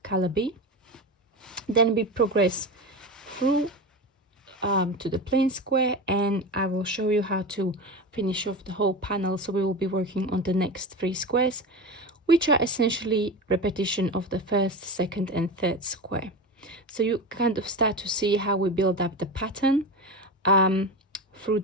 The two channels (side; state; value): both; normal; correlation 0.24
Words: color B. Then we progress through to the plain square, and I will show you how to finish off the whole panel. So we will be working on the next 3 squares, which are essentially repetition of the first, second and third square. So you kind of start to see how we build up the pattern through